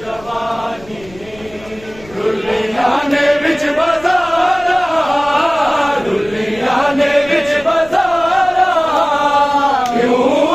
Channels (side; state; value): left; noise; rumble, 22 dB below the sound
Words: रुलिया ने विच बाजारा रुलिया ने विच बाजारा क्यों